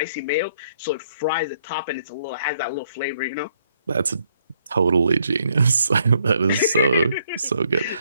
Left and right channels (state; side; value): inverted; both; correlation -0.70